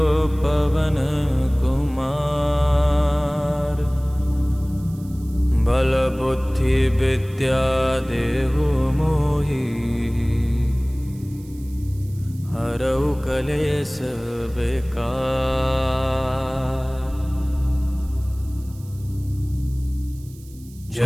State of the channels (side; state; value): right; noise; hiss, 25 dB below the sound